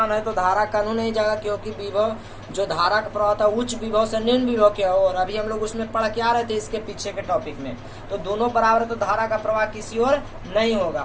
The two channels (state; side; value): identical; both; correlation 1.00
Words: है तो धारा कानून नहीं जाएगा, क्योंकि विभव जो धारा का प्रवाह था उच्च विभव से निम्न विभव के, और अभी हम लोग उसमें पढ़ के आ रहे थे इसके पीछे के टॉपिक में। तो दोनों बराबर तो धारा का प्रवाह किसी और नहीं